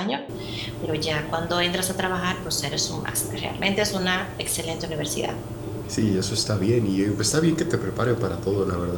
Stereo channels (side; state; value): both; identical; correlation 1.00